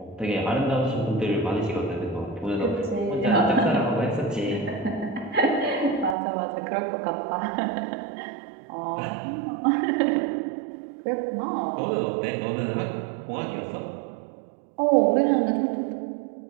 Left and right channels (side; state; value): left; drops out; at 6.2 s